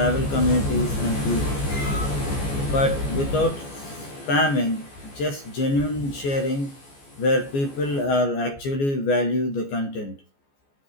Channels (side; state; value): right; late; 14 ms